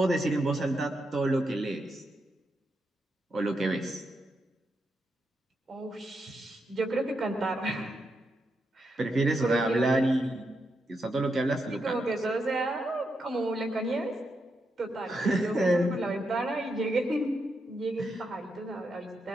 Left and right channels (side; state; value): both; normal; correlation 0.83